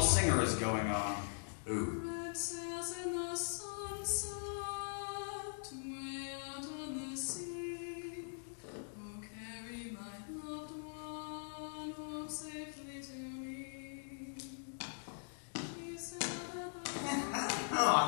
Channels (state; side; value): silent; right; digital silence